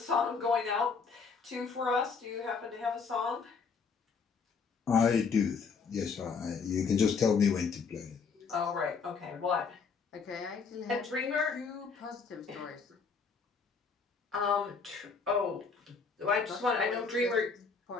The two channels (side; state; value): right; quieter; 5.3 dB